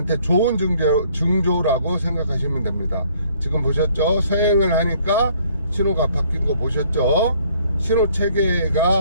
좋은 징조라고 생각하시면 됩니다. 지금 보셨죠? 서행을 하니까 신호가 바뀐 거 보셨죠? 신호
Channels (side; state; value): both; inverted; correlation -0.62